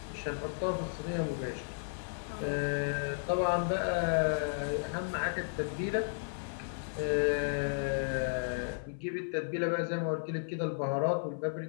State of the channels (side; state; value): right; silent; 55 dB below the other